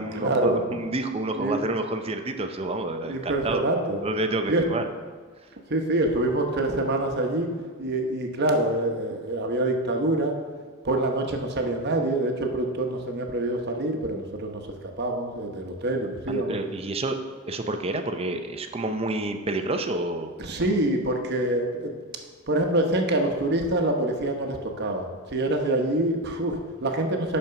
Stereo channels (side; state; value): both; normal; correlation 0.15